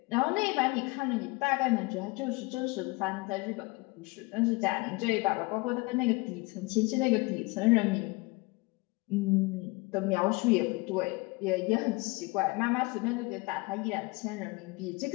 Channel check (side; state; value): right; quieter; 25.2 dB